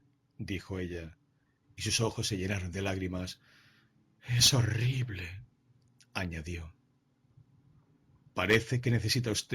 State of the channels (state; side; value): identical; both; correlation 1.00